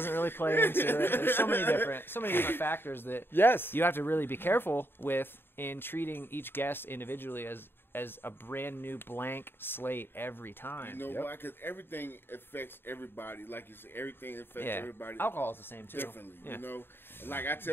really play into it. There's so many different factors that Yes. you have to really be careful with in treating each guest individually as a brand new blank slate every time. You know why? Because everything affects everybody. Like you said, everything affects everybody. Alcohol is the same too. Differently, you know. And like I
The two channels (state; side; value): late; right; 0.10 ms